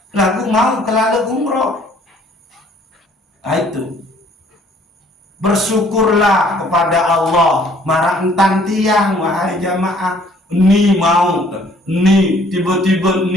Lagu mau kelalu umroh. Nah, itu. Bersyukurlah kepada Allah, marah entan tiang, wahai jamaah. Ni mau, ni tiba-tiba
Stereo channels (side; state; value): both; normal; correlation 0.59